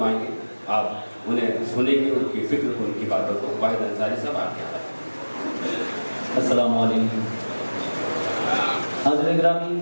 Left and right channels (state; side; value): inverted; both; correlation -1.00